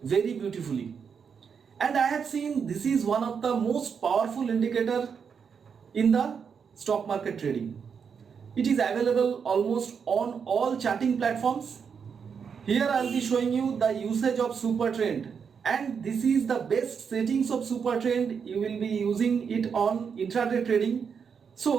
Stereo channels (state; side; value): quieter; left; 6.5 dB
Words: very beautifully. And I have seen this is one of the most powerful indicator in the stock market trading. It is available almost on all charting platforms. Here I will be showing you the usage of super trend, and this is the best settings of super trend. You will be using it on intraday trading.